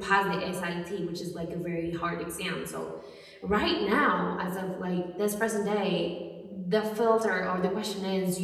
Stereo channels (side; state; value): both; identical; correlation 1.00